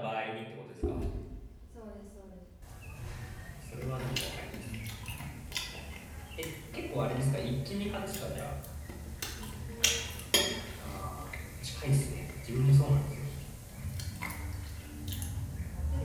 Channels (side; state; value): both; identical; correlation 1.00